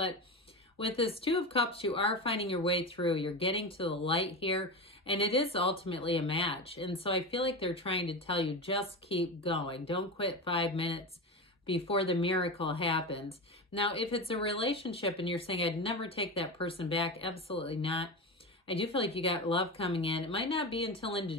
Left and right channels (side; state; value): both; normal; correlation 0.22